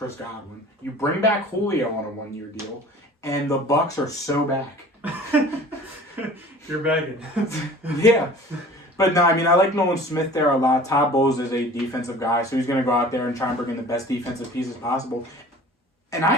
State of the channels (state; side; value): normal; both; correlation 0.45